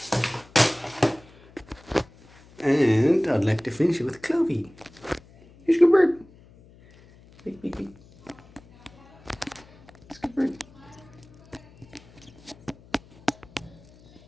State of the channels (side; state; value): left; noise; hum, 25 dB below the sound